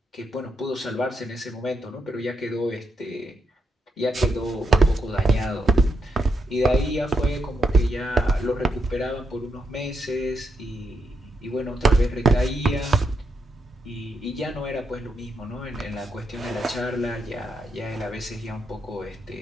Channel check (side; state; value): both; normal; correlation 0.81